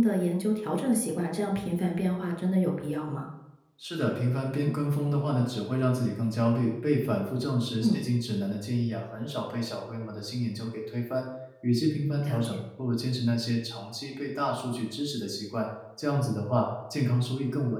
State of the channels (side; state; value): both; identical; correlation 1.00